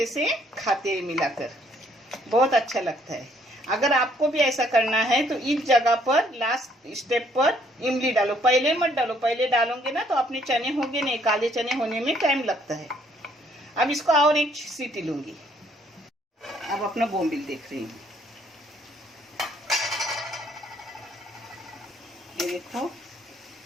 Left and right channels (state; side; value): normal; both; correlation 0.66